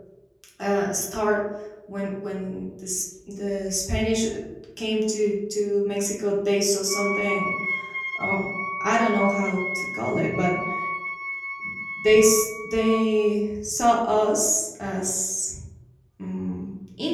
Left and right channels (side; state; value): both; identical; correlation 1.00